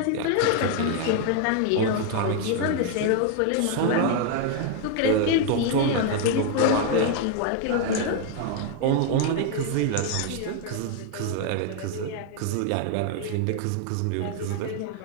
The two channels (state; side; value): different; both; correlation 0.01